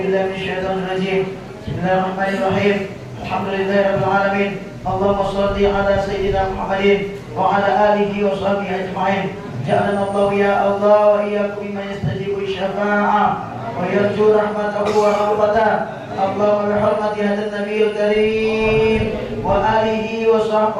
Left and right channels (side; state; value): both; identical; correlation 1.00